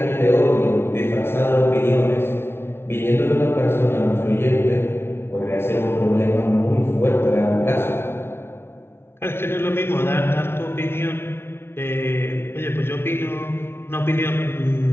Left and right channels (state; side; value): late; right; 0.12 ms